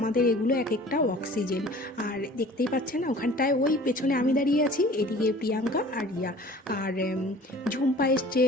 এগুলো এক একটা অক্সিজেন। আর দেখতেই পাচ্ছেন না, ওখানটায় ওই পেছনে আমি দাঁড়িয়ে আছি, এদিকে প্রিয়াঙ্কা আর রিয়া আর ঝুম্পা এসছে,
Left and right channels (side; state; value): both; normal; correlation 0.46